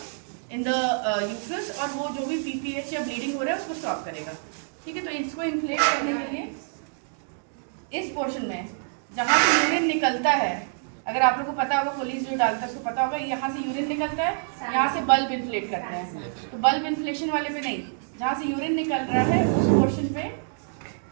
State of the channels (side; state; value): left; silent; digital silence